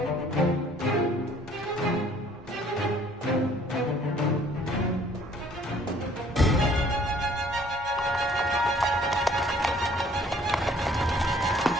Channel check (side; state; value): both; normal; correlation 0.58